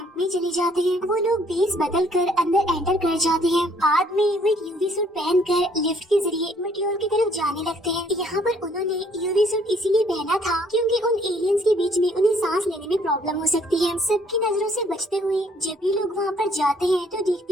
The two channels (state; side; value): normal; both; correlation 0.63